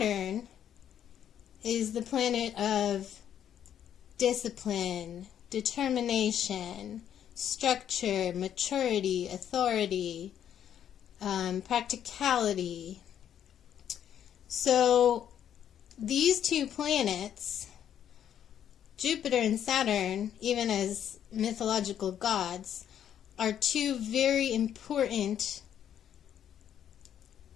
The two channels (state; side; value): quieter; right; 9.7 dB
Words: is the planet of discipline, determination, structure, maturity, authority, practicality. So these two planets, Jupiter and Saturn, even as mythological gods, are two very important,